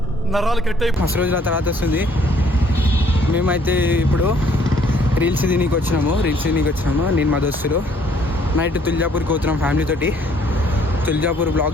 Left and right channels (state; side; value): normal; both; correlation 0.63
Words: నరాలు కట్టే మస్తు రోజుల తర్వాత వస్తుంది. మేమైతే ఇప్పుడు రీల్స్ తినీకి వచ్చినాము. నేను మా దోస్తులు నైట్ తుల్జాపూర్కి పోతున్నాం ఫ్యామిలీ తోటి. తుల్జాపూర్ బ్లాగ్